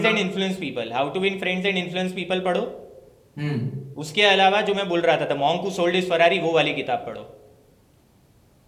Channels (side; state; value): both; identical; correlation 1.00